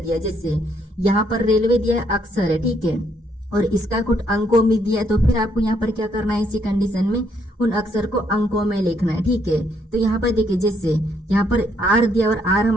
जैसे यहाँ पर रेलवे दिया है, अक्षर है। ठीक है, और इसका कुछ अंकों में दिया है, तो फिर आपको यहाँ पर क्या करना है, इसी कंडीशन में उन अक्षर को अंकों में लिखना है। ठीक है, तो यहाँ पर देखिए जैसे यहाँ पर आर दिया और आर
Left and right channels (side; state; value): both; normal; correlation 0.71